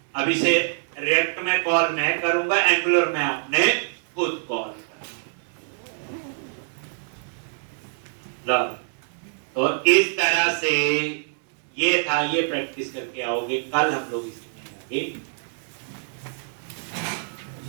अब इसे रिएक्ट में कॉल मैं करूंगा एंगुलर में आपने खुद कॉल करना। तो इस तरह से ये था। ये प्रैक्टिस करके आओगे कल हम लोग इसमें आगे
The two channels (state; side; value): silent; left; 62 dB below the other